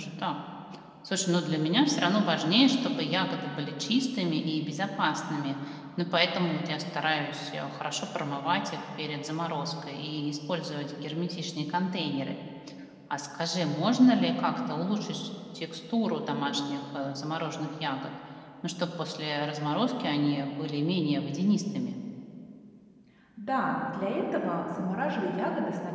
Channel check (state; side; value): identical; both; correlation 1.00